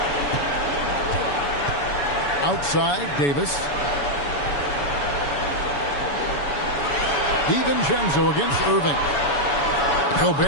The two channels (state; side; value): late; right; 7.0 ms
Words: Outside, Davis. DiVincenzo against Irving.